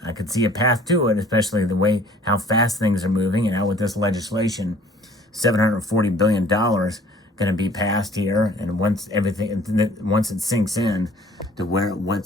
I could see a path to it, especially the way how fast things are moving, and how with this legislation, $740 billion going to be passed here, and once it sinks in to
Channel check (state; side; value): normal; both; correlation 0.53